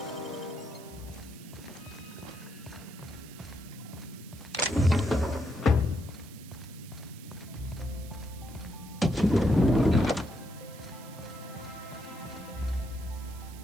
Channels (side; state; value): right; noise; hiss, 19 dB below the sound